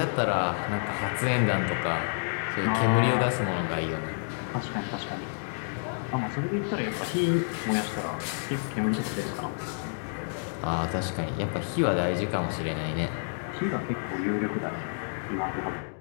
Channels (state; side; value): silent; right; digital silence